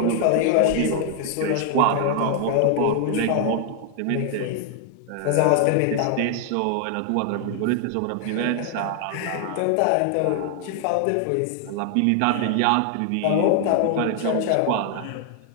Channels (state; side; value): different; both; correlation 0.00